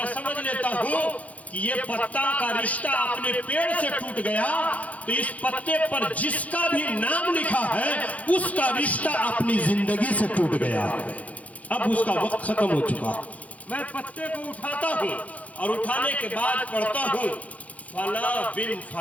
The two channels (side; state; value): right; late; 0.069 ms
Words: سمجھ لیتا ہوں کہ یہ پتا کا رشتہ اپنے پیڑ سے ٹوٹ گیا، تو اس پتے پر جس کا بھی نام لکھا ہے اس کا رشتہ اپنی زندگی سے ٹوٹ گیا، اب اس کا وقت ختم ہو چکا۔ میں پتے کو اٹھاتا ہوں اور اٹھانے کے بعد پڑھتا ہوں فلاں بن